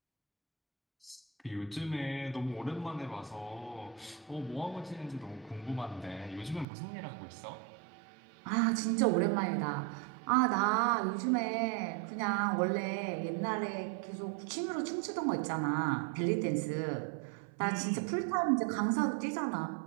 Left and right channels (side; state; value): left; drops out; at 6.7 s